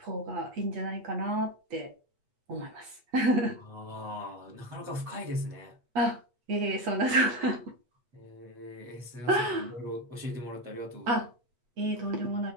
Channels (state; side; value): late; left; 8.4 ms